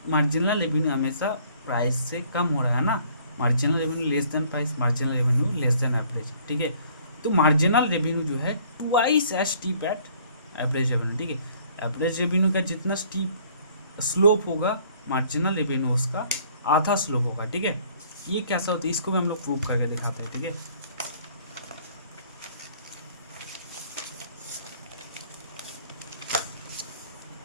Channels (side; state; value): both; inverted; correlation -0.58